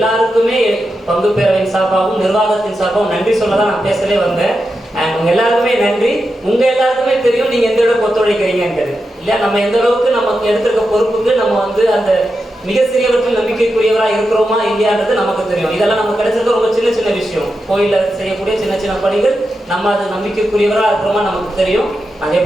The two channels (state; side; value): normal; both; correlation 0.88